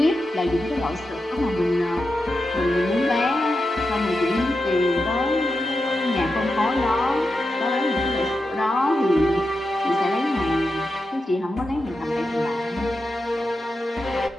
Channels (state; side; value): normal; both; correlation 0.89